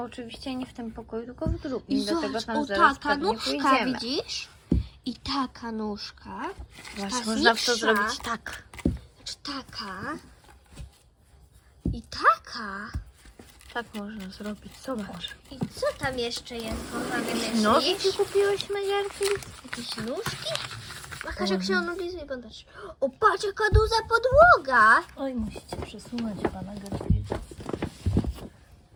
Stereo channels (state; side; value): identical; both; correlation 1.00